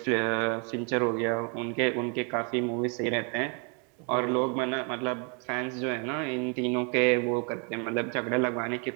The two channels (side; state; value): left; quieter; 37.2 dB